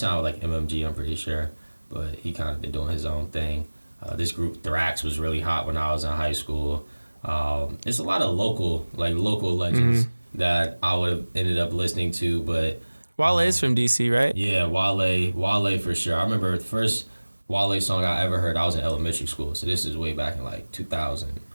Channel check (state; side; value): inverted; both; correlation -1.00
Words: like MMG, I'm pretty sure. but he kind of been doing his own thing. This group Thrax was really hot when I was in high school. It's a lot of local legends that I would have ended up listening to, but Wale's from DC, right? Yeah, Wale for sure. I remember the first Wale song I ever heard, I was in elementary school, so this is way back in like